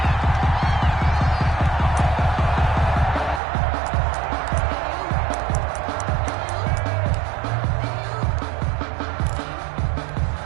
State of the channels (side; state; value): left; drops out; at 3.4 s